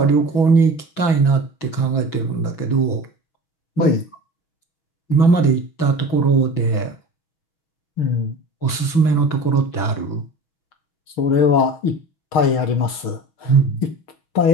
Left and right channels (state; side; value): late; right; 6.1 ms